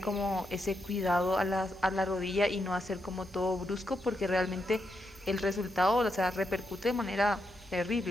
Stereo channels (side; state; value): both; normal; correlation 0.82